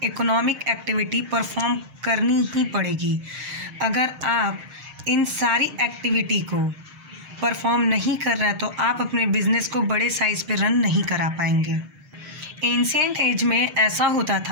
इकोनॉमिक एक्टिविटी परफॉर्म करनी ही पड़ेगी। अगर आप इन सारी एक्टिविटी को परफॉर्म नहीं कर रहे हैं तो आप अपने बिज़नेस को बड़े साइज़ पे रन नहीं करा पाएंगे। एंशिएंट एज में ऐसा होता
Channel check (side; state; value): left; late; 6.5 ms